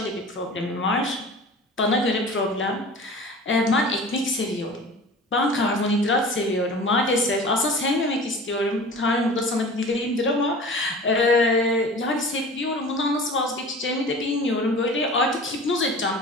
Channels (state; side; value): normal; both; correlation 0.39